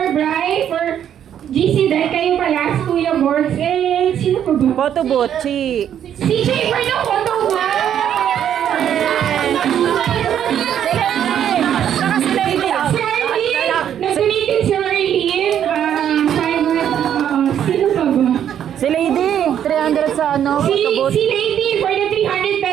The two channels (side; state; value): left; quieter; 9.7 dB